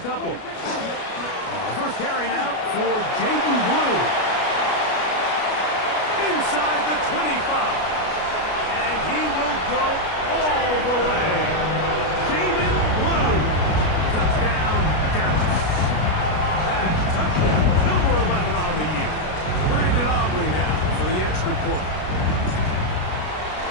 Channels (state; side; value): late; right; 33 ms